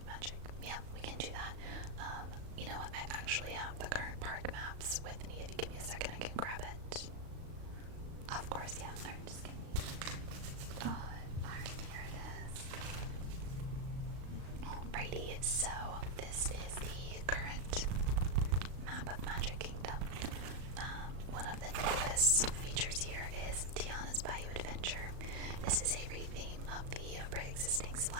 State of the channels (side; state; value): left; late; 36 ms